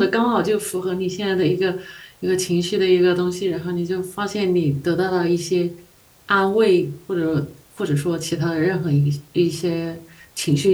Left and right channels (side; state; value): both; identical; correlation 1.00